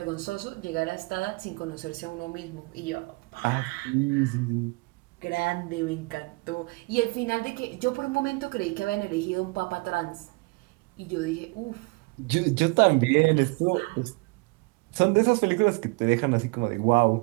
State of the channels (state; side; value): quieter; left; 27.8 dB